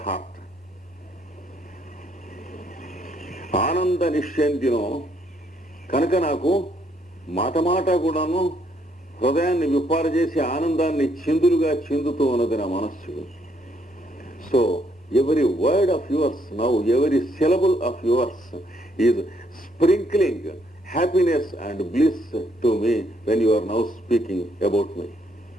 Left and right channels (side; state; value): both; normal; correlation 0.70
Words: heart. ఆనంద నిశ్చంతినో కనుక నాకు మాట మాట కూడాను హృదయాన్ని విప్పార చేసి ఆనందాన్ని చిందులుగా చిందుతూ ఉన్నది నా మనస్సు. So every word of yours now, every syllable of yours is sprinkling happiness and bliss to me when you are now speaking about me.